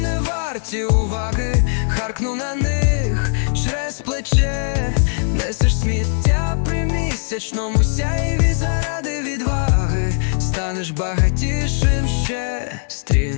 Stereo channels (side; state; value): right; silent; 62 dB below the other